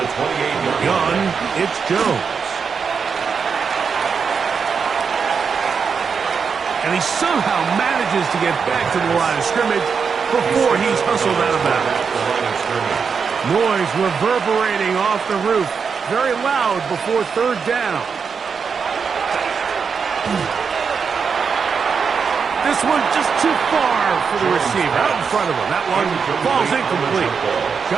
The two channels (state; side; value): quieter; left; 5.9 dB